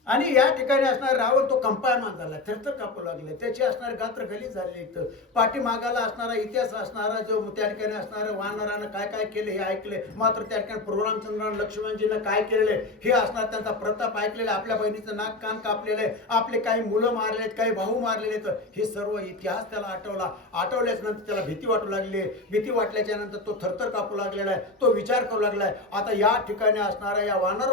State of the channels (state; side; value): quieter; right; 3.1 dB